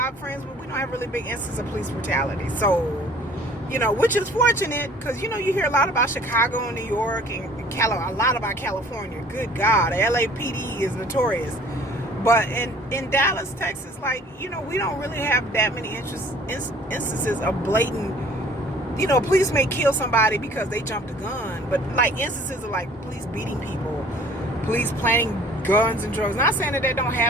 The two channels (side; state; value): both; normal; correlation 0.52